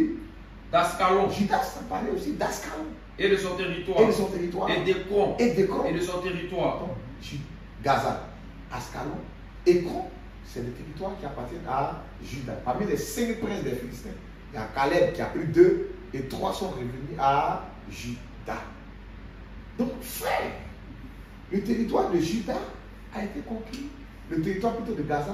D'Ascalon. Juda s'emparait aussi d'Ascalon. Et de son territoire. Et d'Écron. Et de son territoire. Donc, Gaza, Ascalon, Écron, c'est des territoires qui appartiennent à Juda. Parmi les 5 princes des Philistins, il y a Caleb qui a pris 2 et 3 sont revenus à Juda. Donc, frère, le territoire de Juda a été conquis. Le territoire plutôt de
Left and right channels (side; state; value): both; identical; correlation 1.00